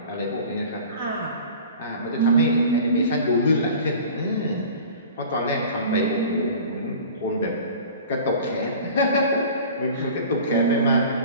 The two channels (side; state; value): both; inverted; correlation -0.41